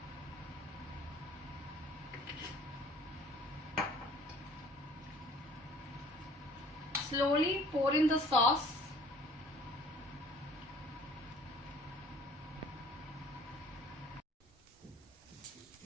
Slowly pour in the sauce.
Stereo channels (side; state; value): both; normal; correlation 0.53